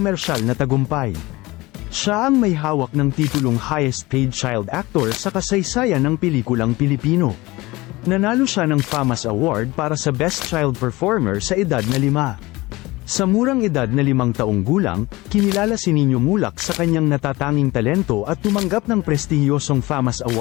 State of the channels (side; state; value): right; quieter; 20.8 dB